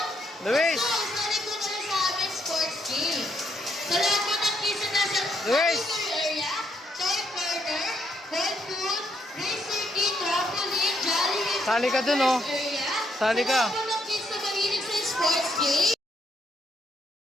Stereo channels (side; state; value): both; normal; correlation 0.75